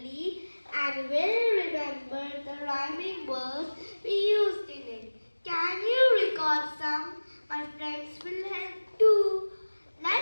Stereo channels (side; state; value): both; inverted; correlation -1.00